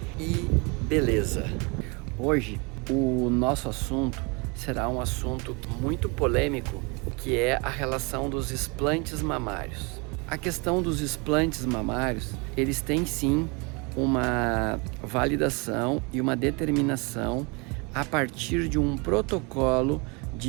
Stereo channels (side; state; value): left; quieter; 30.1 dB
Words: e beleza. Hoje, o nosso assunto será um assunto muito polêmico, que é a relação dos implantes mamários. A questão dos implantes mamários, eles têm sim uma validação e uma determinação a partir de um protocolo